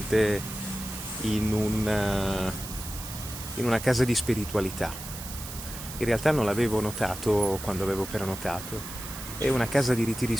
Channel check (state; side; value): noise; right; hiss, 11 dB below the sound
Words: in una casa di spiritualità. In realtà non l'avevo notato quando avevo prenotato. È una casa di ritiri